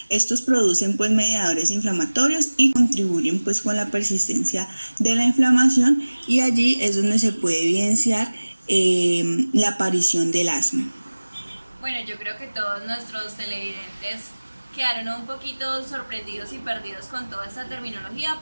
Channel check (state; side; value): inverted; both; correlation -1.00